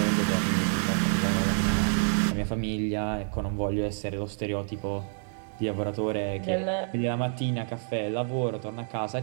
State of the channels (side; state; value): left; silent; digital silence